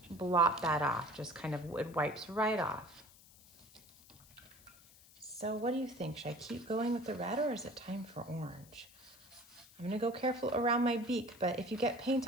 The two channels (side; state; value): left; noise; hiss, 24 dB below the sound